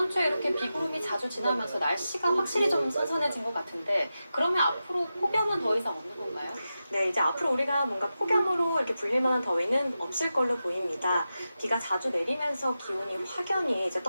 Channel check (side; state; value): both; inverted; correlation -0.91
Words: 주에 이렇게 비구름이 자주 지나면서 날씨가 확실히 좀 선선해진 것 같은데 그러면 앞으로 폭염은 더 이상 없는 건가요? 네, 이제 앞으로 우리가 뭔가 폭염으로 이렇게 불릴 만한 더위는 없을 걸로 보입니다. 비가 자주 내리면서 기온이 확연히 이제